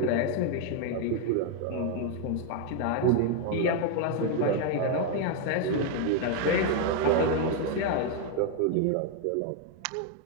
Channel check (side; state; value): both; different; correlation 0.01